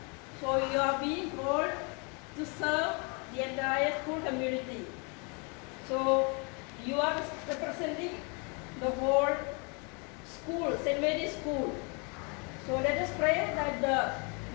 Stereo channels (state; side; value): quieter; right; 33.6 dB